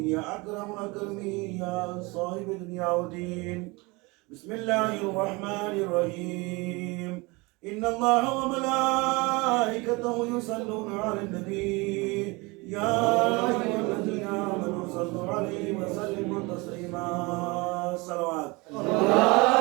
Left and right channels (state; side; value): quieter; left; 25.4 dB